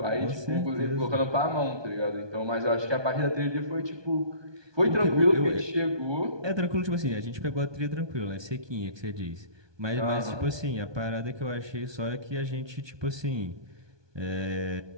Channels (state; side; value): late; left; 1.2 ms